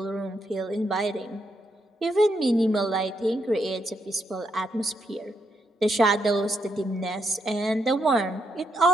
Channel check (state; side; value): normal; both; correlation 0.79